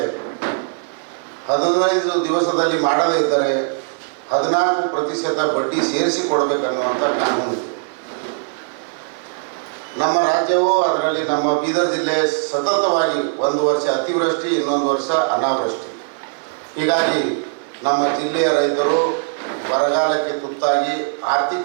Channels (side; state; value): left; silent; digital silence